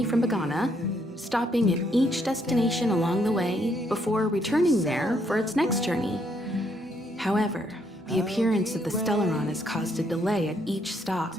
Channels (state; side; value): normal; both; correlation 0.72